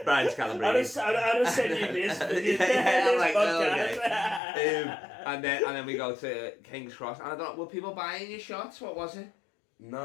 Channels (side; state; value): right; drops out; at 4.4 s